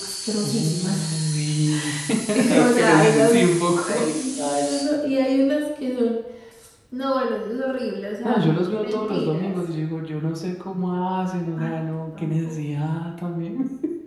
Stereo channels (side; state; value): both; identical; correlation 1.00